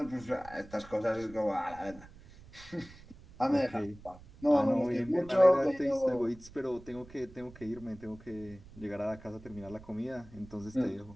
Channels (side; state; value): right; noise; rumble, 20 dB below the sound